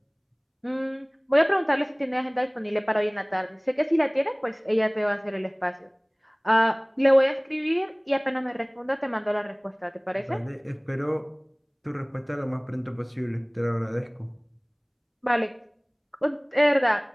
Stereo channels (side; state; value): both; identical; correlation 1.00